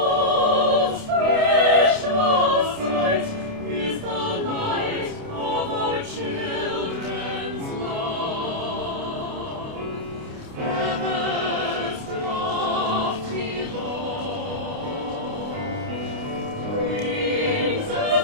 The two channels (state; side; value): late; left; 29 ms